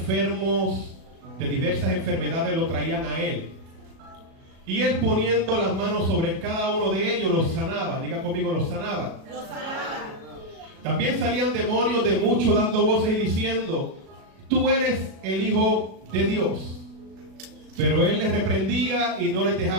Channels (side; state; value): left; late; 36 ms